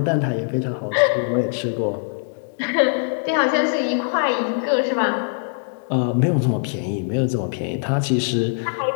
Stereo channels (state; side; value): silent; right; digital silence